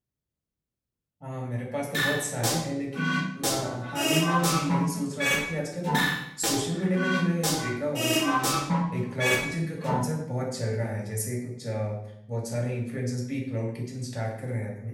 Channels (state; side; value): identical; both; correlation 1.00